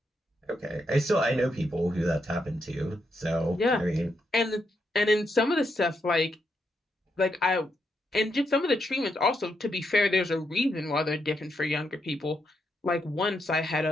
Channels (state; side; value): normal; both; correlation 0.81